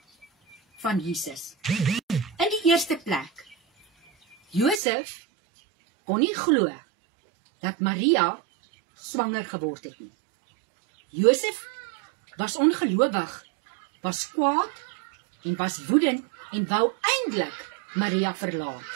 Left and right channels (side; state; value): left; drops out; at 4.8 s